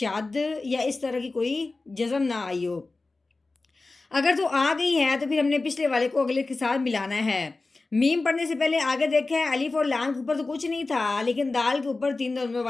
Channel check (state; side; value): quieter; right; 3.5 dB